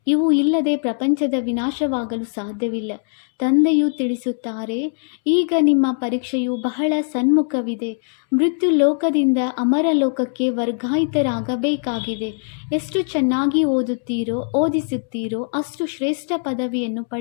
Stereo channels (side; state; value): right; silent; 65 dB below the other